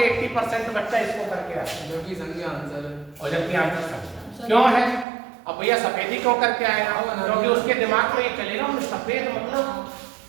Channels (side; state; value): left; drops out; at 5.1 s